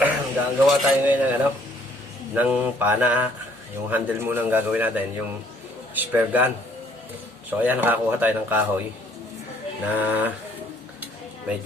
gagawa tayo ngayon ng ng pana. Yung handle muna ang gagawin natin, yung spare gun. So ayan, nakakuha tayo ng kahoy na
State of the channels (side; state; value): both; normal; correlation 0.62